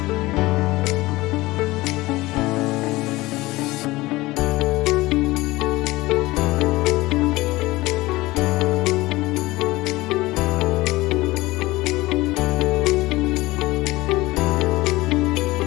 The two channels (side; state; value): right; quieter; 19.6 dB